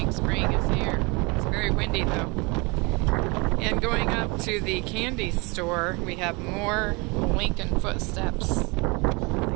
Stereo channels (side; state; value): left; quieter; 27.9 dB